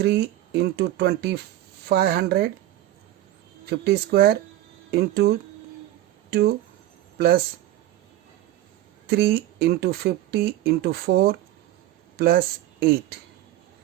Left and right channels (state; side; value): quieter; left; 14.3 dB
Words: into 2500 50 square into 2 plus 3 into 50 into 4 plus 8.